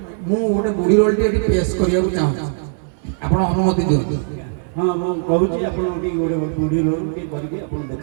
ମୁଁ ଗୋଟେ ବୁଢ଼ୀ ରୋଲଟି ଏଠି ପେଶ କରିବାକୁ ଚାହୁଁଛି ଆପଣ ଅନୁମତି ଦିଅନ୍ତୁ। ହଁ ମୁଁ କହୁଛି ଆପଣ ଟିକେ ଗୋଟେ ବୁଢ଼ୀ ରୋଲ ଟିକେ କରିକି ଆପଣ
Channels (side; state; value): left; silent; digital silence